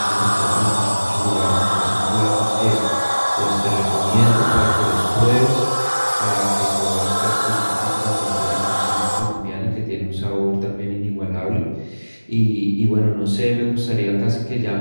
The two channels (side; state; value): both; inverted; correlation -1.00